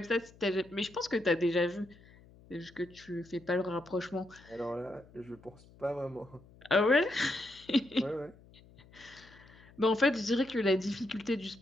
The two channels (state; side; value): noise; left; hum, 24 dB below the sound